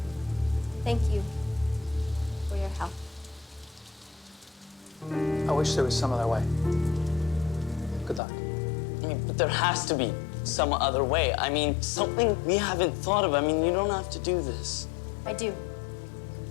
Thank you for your help. I wish there was some other way. Good luck. I mean, but there has to be some other way. I mean, something we haven't thought of. I mean, you don't have to do this. I do.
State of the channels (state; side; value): drops out; right; at 8.2 s